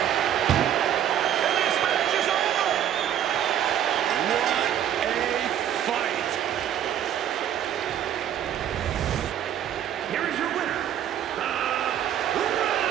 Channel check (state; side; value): quieter; left; 10.3 dB